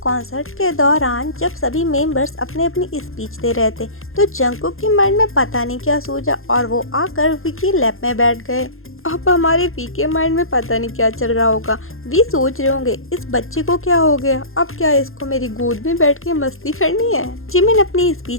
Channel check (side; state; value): right; late; 0.61 ms